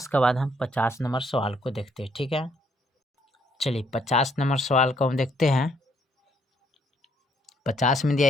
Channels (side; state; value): both; normal; correlation 0.69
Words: के बाद हम 50 नंबर सवाल को देखते हैं। ठीक है, चलिए 50 नंबर सवाल को हम देखते हैं। 50 में दिया